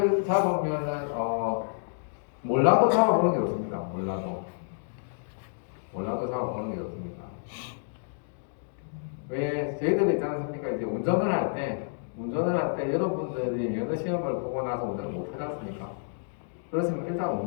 잡으면은 몰라도 잡아보는 게 좋습니다. 몰라도 잡아보는 게 좋습니다. 왜 저희들이 있지 않습니까? 이제 운전을 할 때 여러분들이 면허 시험을 보고 나서 운전을 못 하지 않습니까? 그렇지만 일단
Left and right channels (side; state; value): right; silent; digital silence